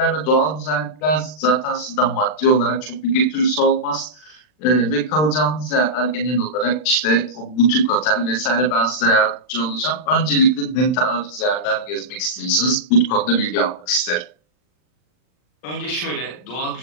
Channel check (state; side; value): late; right; 39 ms